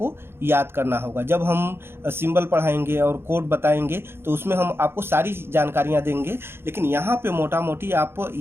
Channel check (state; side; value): late; left; 0.11 ms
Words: याद करना होगा। जब हम सिंबल पढ़ाएंगे और कोड बताएंगे तो उसमें हम आपको सारी जानकारियाँ देंगे, लेकिन यहाँ पे मोटा मोटी आप